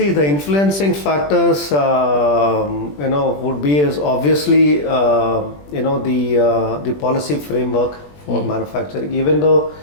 the influencing factors, would be is obviously, the policy framework for manufacturing. Even though,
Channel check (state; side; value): late; right; 20 ms